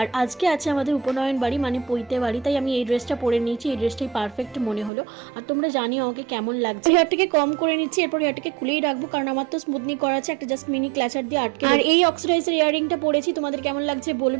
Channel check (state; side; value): drops out; left; at 4.9 s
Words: আজকে আছে আমাদের উপনয়ন বাড়ি মানে পৈতে বাড়ি, তাই আমি এই ড্রেসটা পরে নিয়েছি। এই ড্রেসটাই পারফেক্ট মনে হলো। আর তোমরা জানিও আমাকে কেমন লাগছে। হেয়ারটাকে কম করে নিচ্ছি, এরপর হেয়ারটাকে খুলেই রাখবো কারণ আমার তো স্মুথনিং করা আছে, একটা জাস্ট মিনি ক্লাচার দিয়ে আটকে। আর এই অক্সিডাইজের ইয়ারিংটা পরেছি, তোমাদের কেমন লাগছে